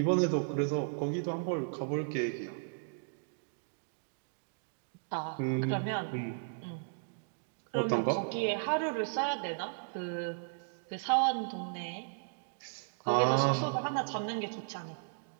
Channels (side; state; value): left; silent; digital silence